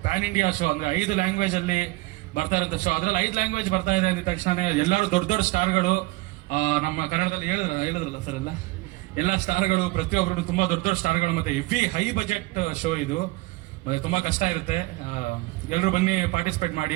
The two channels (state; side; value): quieter; left; 21.3 dB